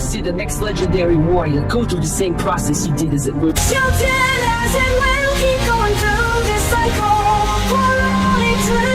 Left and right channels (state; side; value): identical; both; correlation 1.00